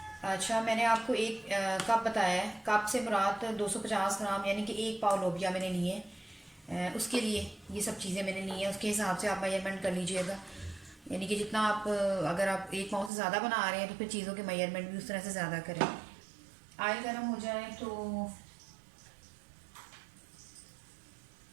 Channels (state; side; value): drops out; left; at 13.1 s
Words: अच्छा, मैंने आपको 1 कप बताया है। कप से मुराद 250 ग्राम यानी कि 1 पाव लोबिया मैंने लिए। उसके लिए ये सब चीज़ें मैंने ली हैं, उसके हिसाब से आप मेजरमेंट कर लीजिएगा। यानी कि जितना आप, अगर आप 1 पाव से ज़्यादा बना रहे हैं तो फिर चीज़ों के मेजरमेंट भी उस तरह से ज़्यादा करें। ऑयल गर्म हो जाए तो